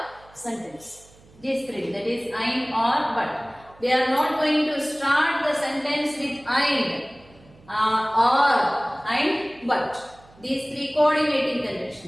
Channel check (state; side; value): noise; right; hum, 26 dB below the sound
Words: sentence. These three, that is and, or, but. We are not going to start the sentence with and, or, and, but. These three coordinating